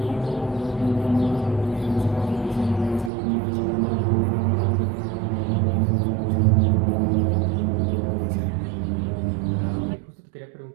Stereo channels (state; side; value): drops out; left; at 3.1 s